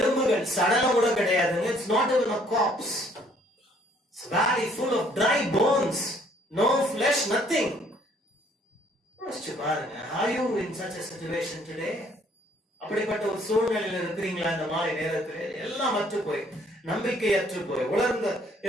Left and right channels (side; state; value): both; normal; correlation 0.62